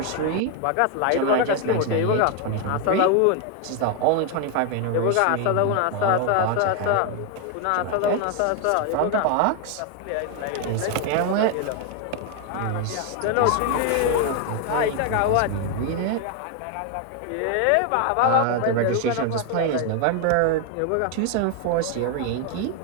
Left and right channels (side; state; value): both; different; correlation 0.01